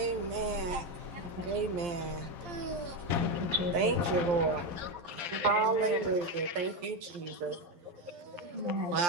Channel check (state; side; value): late; left; 12 ms